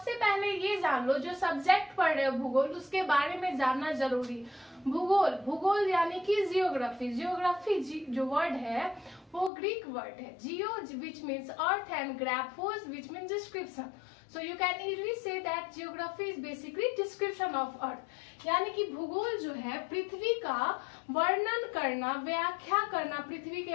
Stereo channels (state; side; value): drops out; right; at 9.5 s